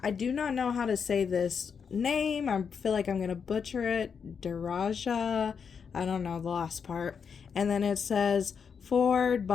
I do not know how to say this name. I feel like I'm going to butcher it. Daraja. I don't know the last part. And then it says, forward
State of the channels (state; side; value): quieter; right; 6.4 dB